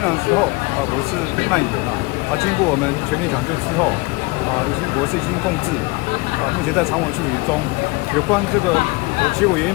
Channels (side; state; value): right; quieter; 25.0 dB